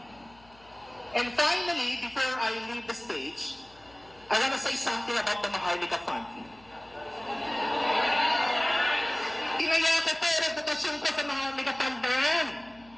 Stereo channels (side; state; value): left; noise; hum, 27 dB below the sound